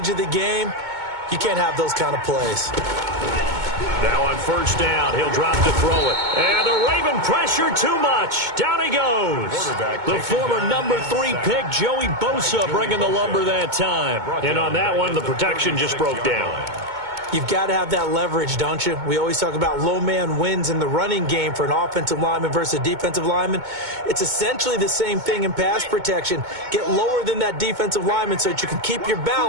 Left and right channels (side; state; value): left; late; 2.2 ms